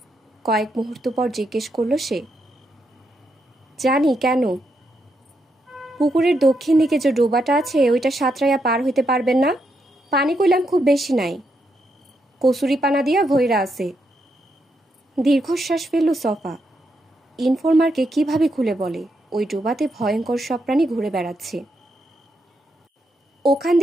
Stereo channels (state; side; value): normal; both; correlation 0.81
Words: কয়েক মুহূর্ত পর জিজ্ঞেস করল সে। জানি, কেন? পুকুরের দক্ষিণ দিকে যে ডোবাটা আছে ওইটা সাঁতরাইয়া পার হইতে পারবেন না? পানি কইলাম খুব বেশি নাই, কসুরি পানা দিয়া ভৈরা আছে। দীর্ঘশ্বাস ফেলল সফা। ইনফরমারকে কিভাবে খুলে বলে ওই ডোবাতে ভয়ঙ্কর সব প্রাণী ঘুরে বেড়াচ্ছে? ওখান